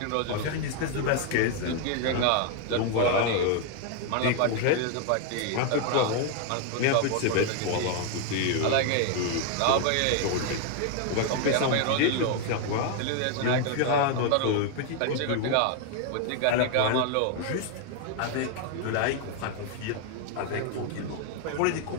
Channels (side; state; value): both; different; correlation 0.01